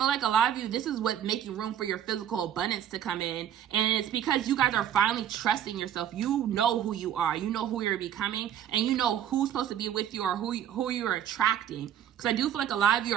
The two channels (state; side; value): quieter; left; 10.0 dB